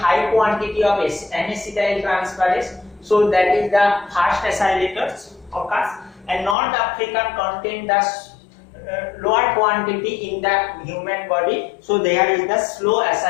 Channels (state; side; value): drops out; right; at 6.6 s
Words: quantity of N-acetyl transferase, so that is the fast acylators occurs, and North African contain the lower quantity in the human body, so there is the slow